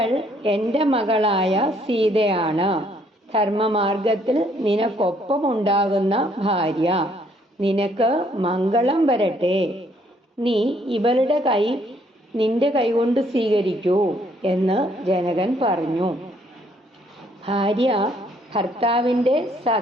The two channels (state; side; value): normal; both; correlation 0.66